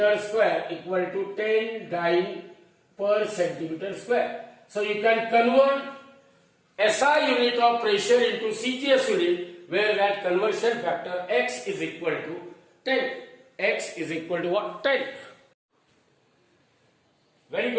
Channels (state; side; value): identical; both; correlation 1.00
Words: square equal to 10 dyne per centimeter square. So you can convert SI unit of pressure into CGS unit, where that conversion factor x is equal to 10. X is equal to what? 10. Very